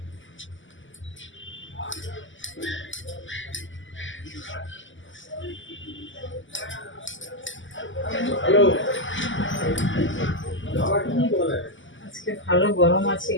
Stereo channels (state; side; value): late; right; 0.55 ms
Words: আজকে ভালো গরম আছে